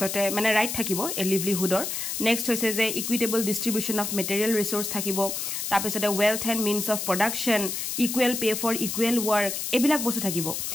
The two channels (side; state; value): left; noise; hiss, 3 dB below the sound